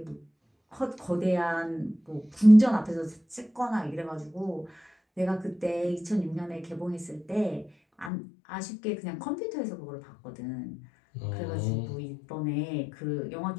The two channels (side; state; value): right; drops out; at 8.1 s